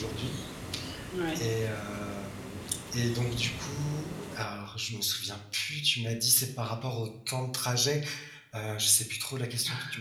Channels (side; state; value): both; identical; correlation 1.00